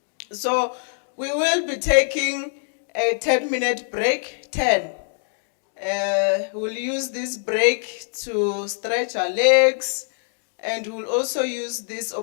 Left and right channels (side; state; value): right; silent; 63 dB below the other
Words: So we will be taking a 10-minute break, 10. We'll use this break to stretch our legs, and we'll also use this